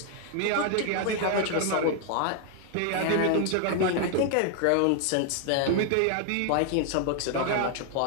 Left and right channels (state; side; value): different; both; correlation 0.00